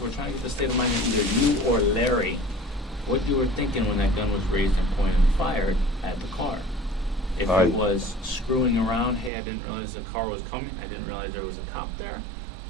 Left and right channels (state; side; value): drops out; left; at 9.3 s